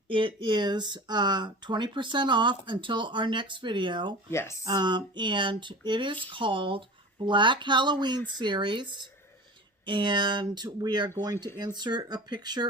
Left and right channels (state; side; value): normal; both; correlation 0.36